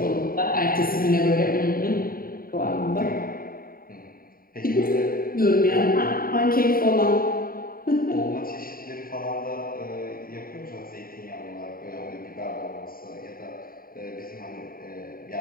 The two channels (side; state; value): right; late; 0.42 ms